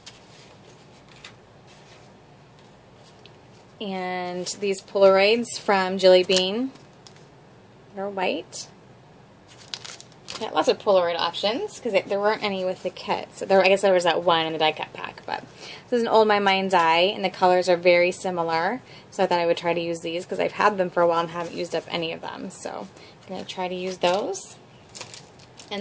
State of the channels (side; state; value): both; identical; correlation 1.00